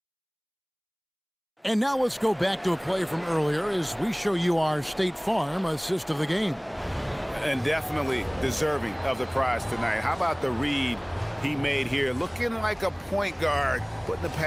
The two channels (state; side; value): identical; both; correlation 1.00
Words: And now let's go back to a play from earlier as we show you our State Farm assist of the game. And definitely deserving of the prize tonight. How about the read he made here? Looking like a point guard, putting the